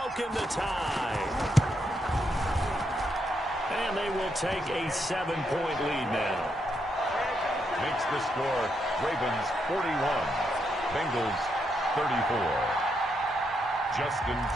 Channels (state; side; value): normal; both; correlation 0.80